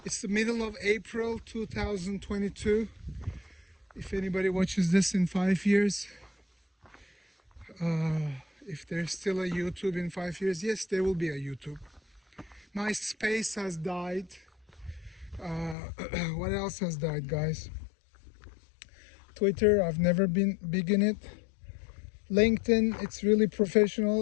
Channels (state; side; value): drops out; right; at 15.8 s